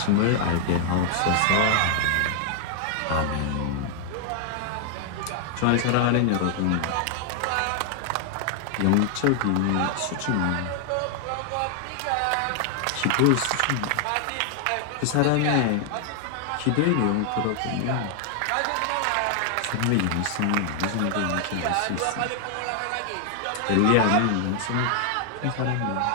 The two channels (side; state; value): both; different; correlation 0.00